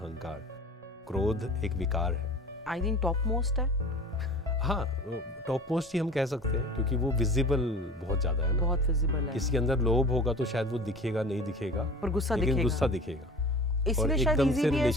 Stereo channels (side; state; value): both; normal; correlation 0.40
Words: क्रोध एक विकार है, आई थिंक टॉप मोस्ट है। हाँ, टॉप मोस्ट ही हम कह सकते हैं, क्योंकि वो विजिबल बहुत ज़्यादा है ना, बहुत विजिबल है। किसी के अंदर लोभ होगा तो शायद वो दिखेगा नहीं दिखेगा, पर गुस्सा लेकिन दिखेगा। गुस्सा दिखेगा, इसलिए शायद इजी भी है